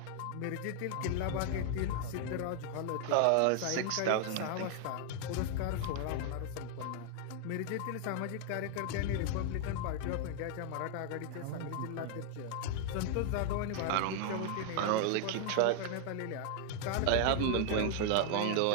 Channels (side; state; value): both; different; correlation 0.00